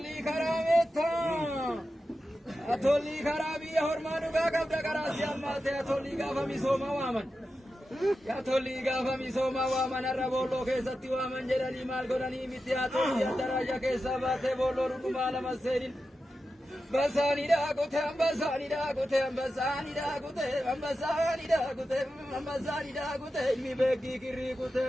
karaa meettaa. Tolli karaa biyya hormaa dhugaa qabda karaa si ammaatee tolli gaafa misooma waaman. Tolli gaafa misooma waaman har'a boolloo keessatti waaman jedhanii maal godhanii miti haa tolli addaraasha keessaa baatee boolloo dhugumaa lama seenin. Basani da kute, basani da kute, basani da kute, basani da kute, basani da kute, mi begi kiri kute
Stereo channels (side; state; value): both; normal; correlation 0.91